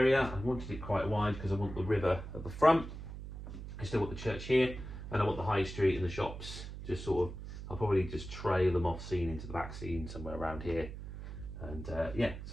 I wanted it quite wide because I want the river at the front. I still want the church here, and I want the high street and the shops just sort of, I'll probably just trail them off scene into the back scene somewhere around here. And yeah,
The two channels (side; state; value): right; noise; hum, 10 dB below the sound